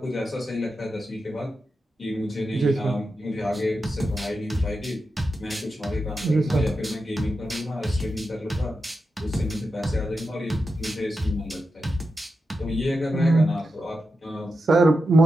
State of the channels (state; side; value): normal; both; correlation 0.89